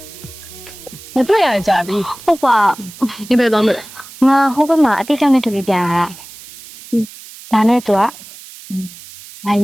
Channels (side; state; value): right; noise; hiss, 18 dB below the sound